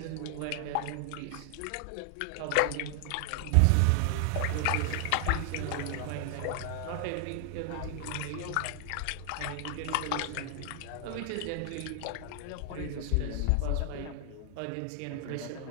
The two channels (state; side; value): different; both; correlation 0.00